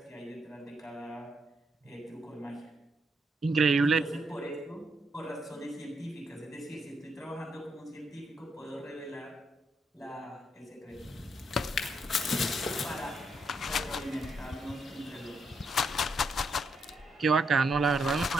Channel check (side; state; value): both; normal; correlation 0.78